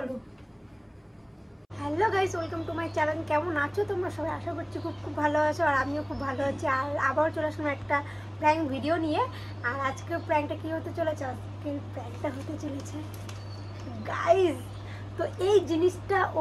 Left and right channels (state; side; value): identical; both; correlation 1.00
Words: hello guys welcome to my channel কেমন আছো তোমরা সবাই আশা করছি খুব ভালো আছো আর আমিও খুব ভালো আছি আর আবার চলে আসলাম একটা প্র্যাঙ্ক ভিডিও নিয়ে আর আজকের প্র্যাঙ্কটা কি হতে চলেছে আজকের প্র্যাঙ্কটা হতে চলেছে গাইস তো এই জিনিসটা